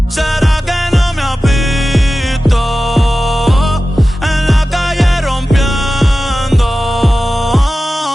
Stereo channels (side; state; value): both; normal; correlation 0.95